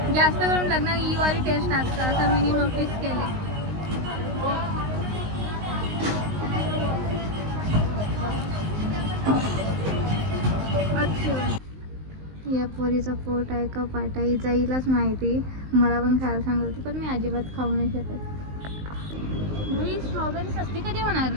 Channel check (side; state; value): left; late; 19 ms